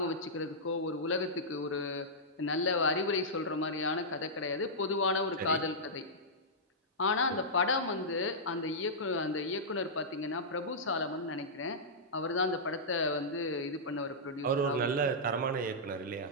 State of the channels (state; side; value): normal; both; correlation -0.12